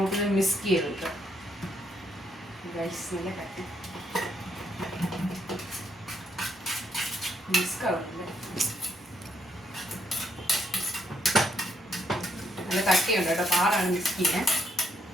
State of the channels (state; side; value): normal; both; correlation 0.75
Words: മിക്സ് ചെയ്തെടുക്കാം. നല്ല കട്ടി മിക്സ് ആവുന്നുണ്ട്. നല്ല കട്ടിയുണ്ട് കേട്ടോ, പാടാണ് മിക്സ് ചെയ്യാൻ.